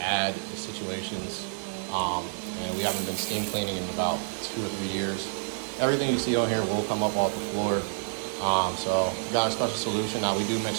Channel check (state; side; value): silent; left; 58 dB below the other